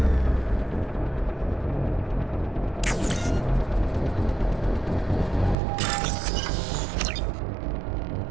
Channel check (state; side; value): drops out; left; at 5.6 s